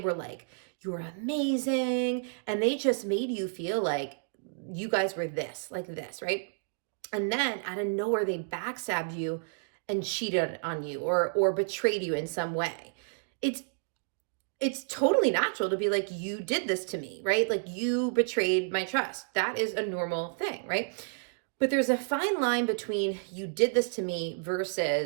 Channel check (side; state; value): left; silent; digital silence